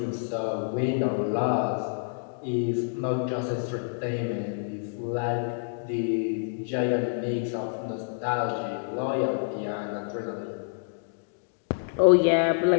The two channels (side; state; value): right; silent; digital silence